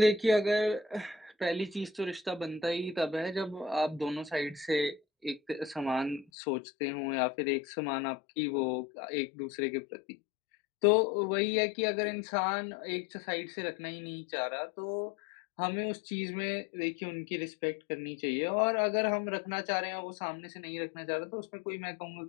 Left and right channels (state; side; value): drops out; right; at 6.2 s